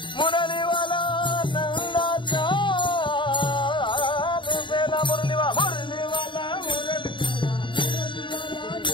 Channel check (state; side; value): late; right; 0.23 ms